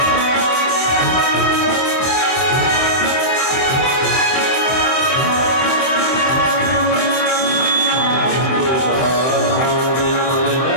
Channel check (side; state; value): right; late; 24 ms